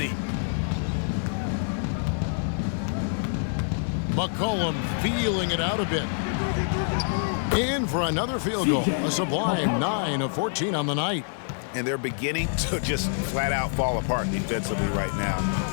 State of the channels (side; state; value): right; silent; digital silence